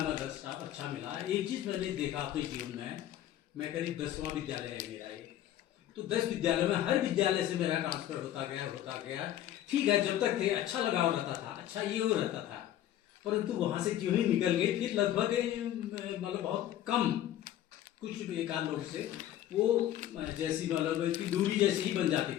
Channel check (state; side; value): quieter; right; 12.2 dB